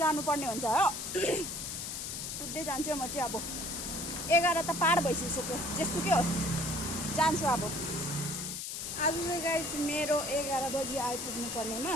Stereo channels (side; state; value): left; noise; hiss, 5 dB below the sound